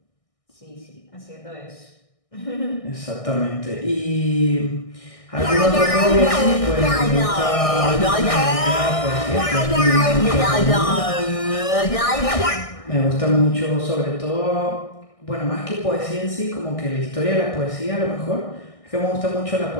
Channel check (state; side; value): late; right; 1.6 ms